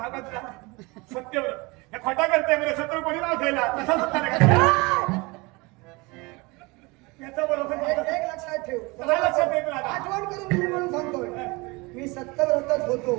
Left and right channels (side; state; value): left; quieter; 25.4 dB